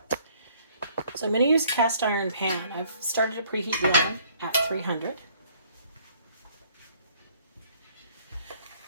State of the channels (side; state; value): both; inverted; correlation -0.60